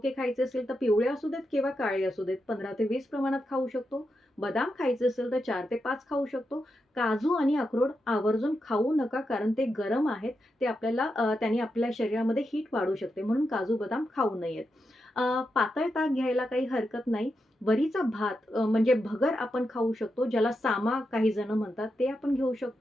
खायचे असेल तर पिवळे असू देत किंवा काळे असू देत 15 ते 20 प्रमाणात खाऊ शकतो. बदाम खायचे असेल तर 4 ते 5 खाऊ शकतो. काजू आणि अक्रोड आवर्जून खाऊ नका कारण ते गरम आहेत. ते आपल्याला त्याने आपल्या शरीरामध्ये हीट वाढू शकते म्हणून काजू, बदाम खाऊ नयेत. पातळ ताक घ्यायला काही हरकत नाही. वरीचा भात म्हणजे भगर आपण खाऊ शकतो, ज्याला सामा काही जण म्हणतात, ते आपण घेऊ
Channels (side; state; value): both; normal; correlation 0.87